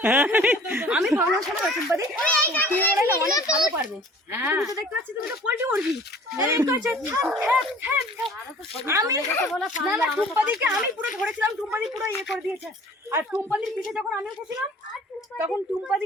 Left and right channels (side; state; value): both; normal; correlation 0.49